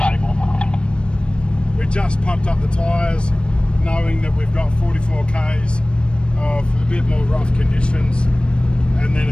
We just pumped up the tyres, knowing that we've got 44 k's of a bit more rough conditions, and then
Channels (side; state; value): right; late; 0.056 ms